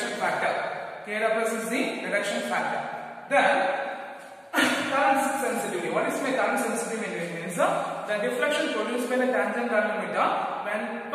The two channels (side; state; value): both; identical; correlation 1.00